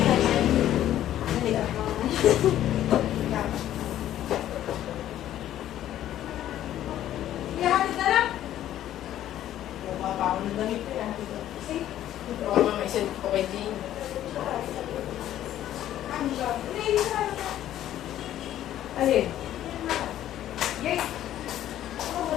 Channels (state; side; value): quieter; right; 12.3 dB